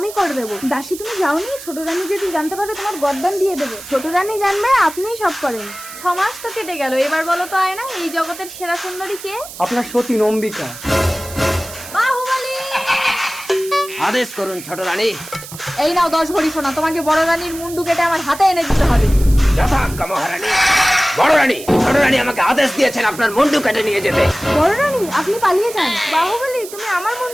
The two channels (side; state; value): right; noise; hiss, 14 dB below the sound